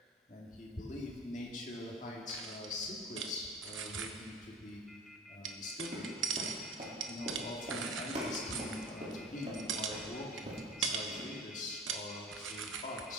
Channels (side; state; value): both; normal; correlation 0.39